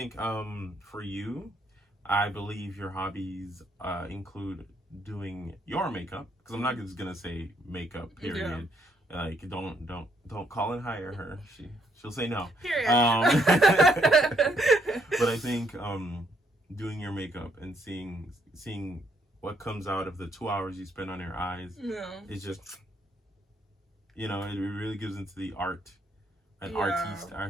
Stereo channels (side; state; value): both; normal; correlation 0.71